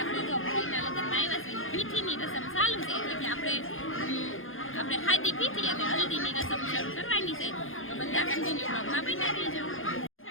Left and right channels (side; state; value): right; late; 0.59 ms